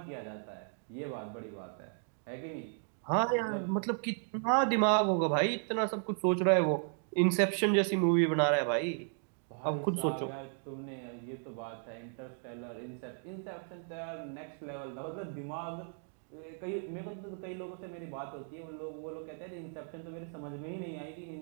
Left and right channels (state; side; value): silent; left; 54 dB below the other